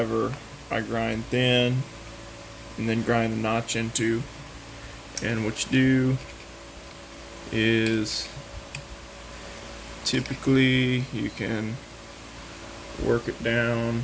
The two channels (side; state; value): both; identical; correlation 1.00